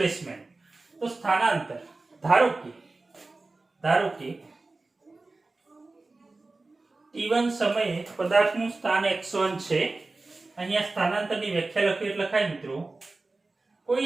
તો સ્થાનાંતર, ધારો કે t1 સમયે પદાર્થનું સ્થાન x1 છે. અહીંયા સ્થાનાંતરની વ્યાખ્યા લખી એટલે લખાય મિત્રો,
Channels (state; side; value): quieter; left; 3.4 dB